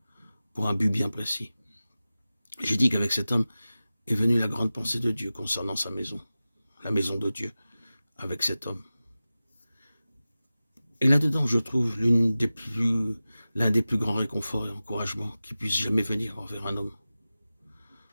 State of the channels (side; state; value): both; inverted; correlation -0.96